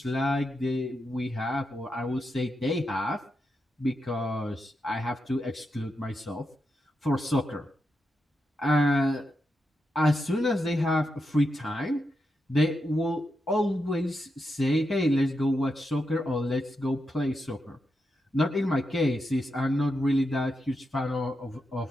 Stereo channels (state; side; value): normal; both; correlation 0.85